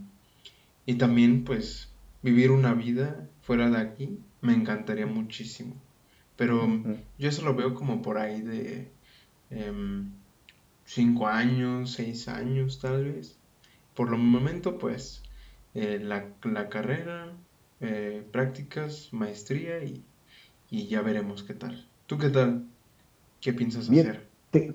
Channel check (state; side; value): identical; both; correlation 1.00